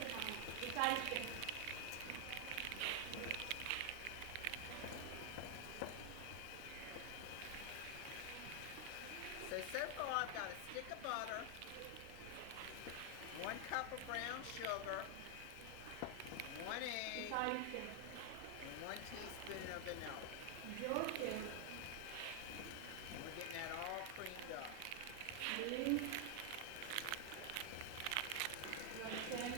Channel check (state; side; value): different; both; correlation 0.00